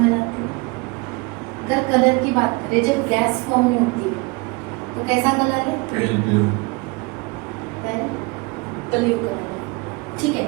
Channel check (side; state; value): left; quieter; 27.3 dB